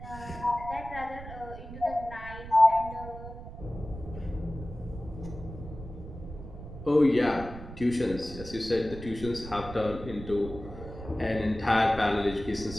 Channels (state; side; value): noise; right; rumble, 12 dB below the sound